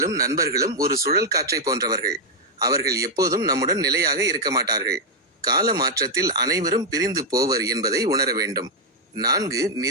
நண்பர்களும் ஒரு சுழல் காற்றை போன்றவர்கள். அவர்கள் எப்போதும் நம்முடன் நிலையாக இருக்க மாட்டார்கள். கால மாற்றத்தில் அனைவரும் பிரிந்து போவர் என்பதை உணர வேண்டும். 4.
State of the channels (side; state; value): both; normal; correlation -0.02